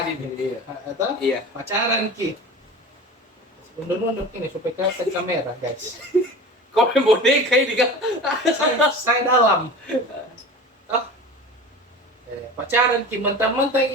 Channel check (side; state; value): both; normal; correlation 0.35